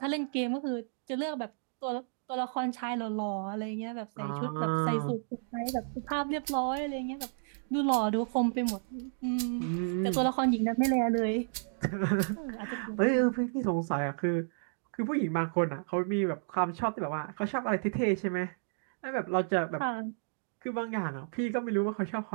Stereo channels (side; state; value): left; silent; digital silence